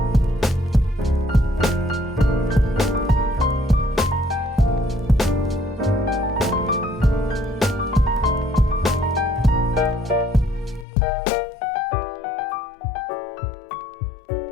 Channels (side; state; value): right; drops out; at 10.9 s